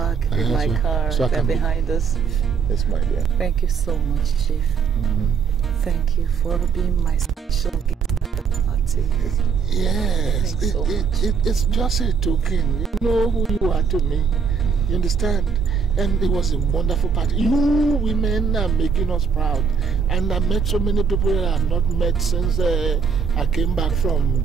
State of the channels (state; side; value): quieter; left; 5.9 dB